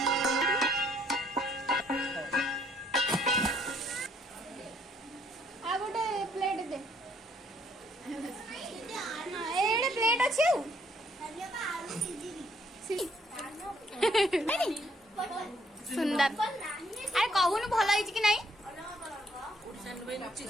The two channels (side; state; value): both; normal; correlation 0.67